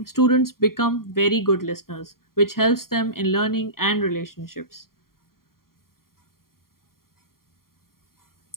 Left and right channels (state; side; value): late; right; 0.92 ms